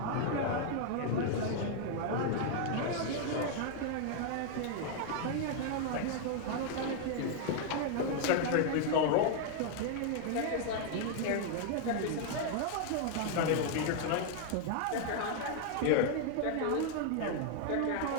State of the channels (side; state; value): both; different; correlation 0.00